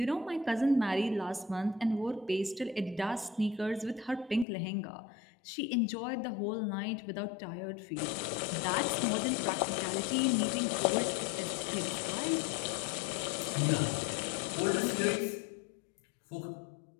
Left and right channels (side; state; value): right; drops out; at 4.5 s